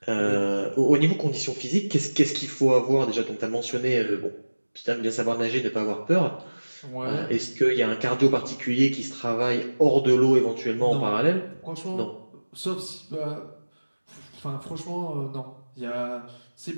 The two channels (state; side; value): inverted; both; correlation -1.00